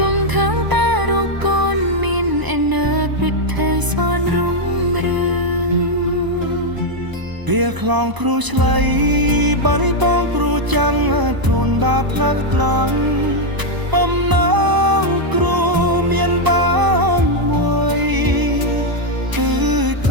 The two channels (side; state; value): left; late; 1.0 ms